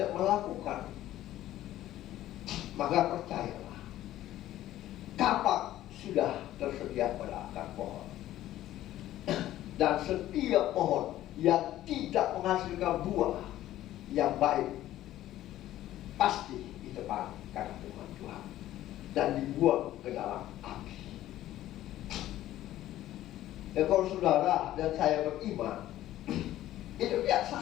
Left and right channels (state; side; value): quieter; right; 13.9 dB